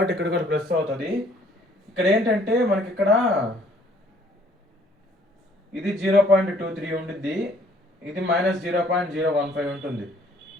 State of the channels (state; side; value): normal; both; correlation 0.60